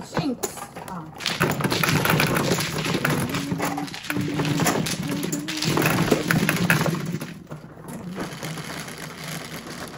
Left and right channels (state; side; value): identical; both; correlation 1.00